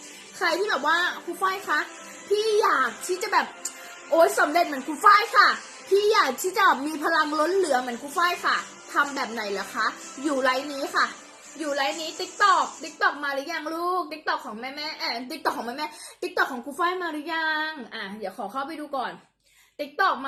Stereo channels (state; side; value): identical; both; correlation 1.00